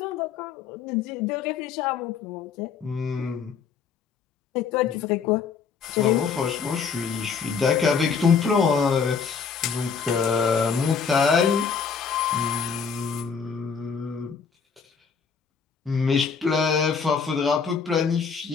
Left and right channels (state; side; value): quieter; right; 6.1 dB